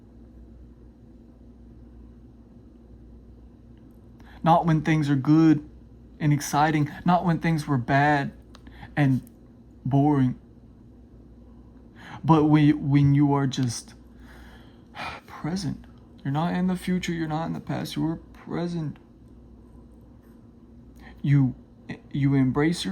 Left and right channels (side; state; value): both; identical; correlation 1.00